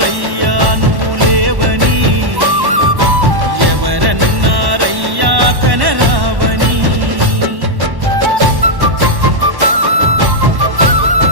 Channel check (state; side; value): late; left; 1.1 ms